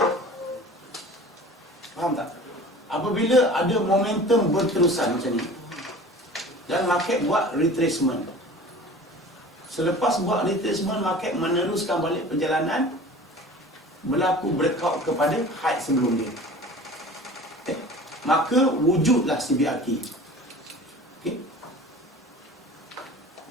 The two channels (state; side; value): normal; both; correlation 0.41